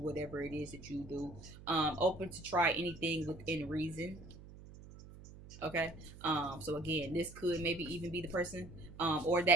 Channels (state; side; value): noise; right; hum, 17 dB below the sound